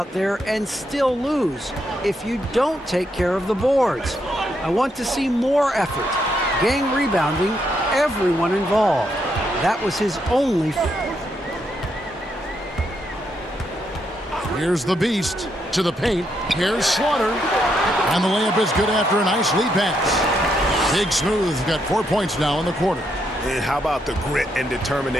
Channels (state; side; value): normal; both; correlation 0.78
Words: there and still lose if you don't take care of the boards. I want to see more effort, gang rebounding, everyone involved. That was his only. Here's the Beast to the paint. Here's Slaughter. And the layup is good after a nice lead pass. Big Smooth got 4 points now in the quarter. And how about the grit and